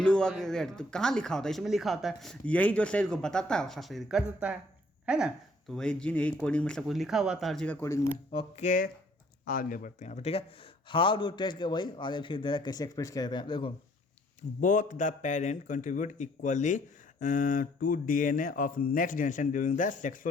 होगा कि रेड, तो कहाँ लिखा होता है? इसमें लिखा होता है। यही जो शरीर को बताता है वैसा शरीर कर देता है ना। तो वही जीन, यही कोडिंग में सब कुछ लिखा हुआ था हर चीज़ का कोडिंग में। ओके, आगे बढ़ते हैं यहाँ पर, ठीक है। हाउ डू टेस्ट के वही आगे फिर दे रहा है कैसे एक्सप्रेस किया जाता है। देखो both the parent contribute equally to DNA of next generation during the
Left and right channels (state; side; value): normal; both; correlation 0.62